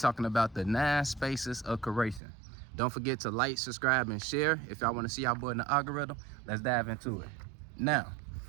about the 9 spaces of curation. Don't forget to like, subscribe, and share. If y'all wanna see our boy in the algorithm, let's dive into it. Now,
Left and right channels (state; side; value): drops out; left; at 2.2 s